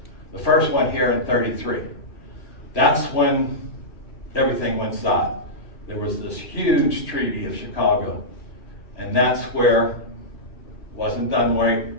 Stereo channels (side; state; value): right; late; 2.5 ms